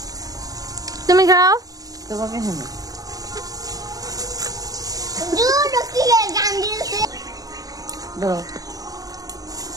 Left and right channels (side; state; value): left; late; 0.18 ms